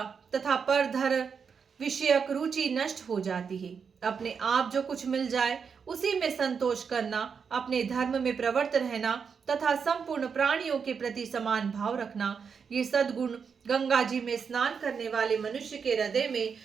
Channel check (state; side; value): quieter; left; 6.2 dB